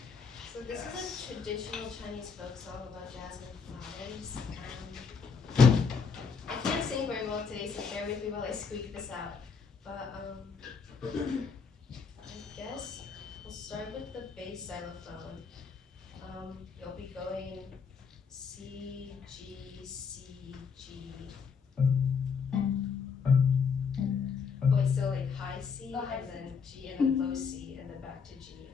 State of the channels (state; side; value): quieter; right; 5.7 dB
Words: So this is a traditional Chinese folk song about jasmine flowers. I can't sing very well today, so bear with me while I squeak this out. But I guess we'll start with the bass xylophone. You'll be going C, G, C, G. Wait, so like high C, Oh, high and C. then G, and then low C, and then back to G,